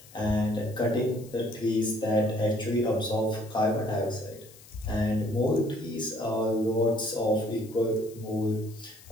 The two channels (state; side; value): noise; left; hiss, 22 dB below the sound